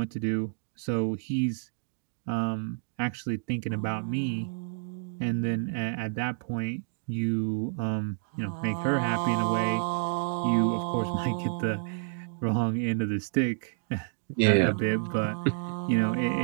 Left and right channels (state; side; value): silent; left; digital silence